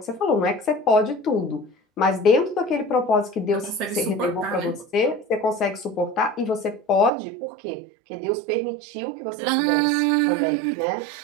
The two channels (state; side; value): drops out; left; at 7.1 s